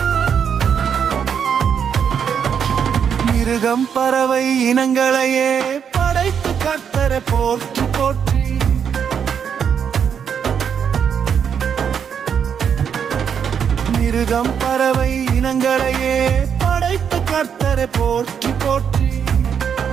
மிருகம் பறவை இனங்களையே படைத்து கர்த்தரை போற்றி போற்றி. மிருகம் பறவை இனங்களையே படைத்து கர்த்தரை போற்றி போற்றி.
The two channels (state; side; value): quieter; left; 7.6 dB